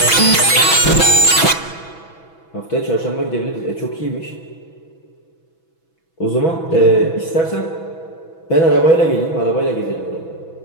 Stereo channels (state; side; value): late; right; 6.1 ms